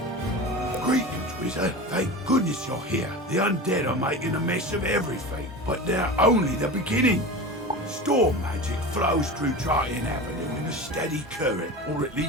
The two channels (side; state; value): both; normal; correlation 0.30